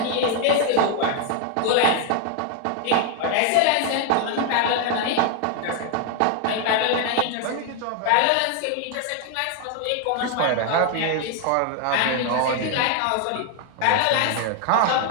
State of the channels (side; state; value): both; different; correlation 0.00